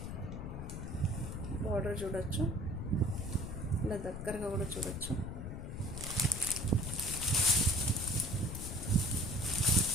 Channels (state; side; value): noise; left; rumble, 7 dB below the sound